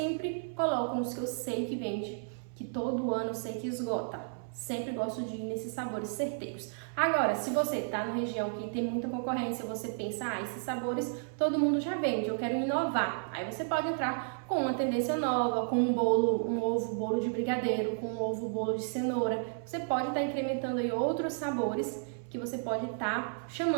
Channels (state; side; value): silent; left; 56 dB below the other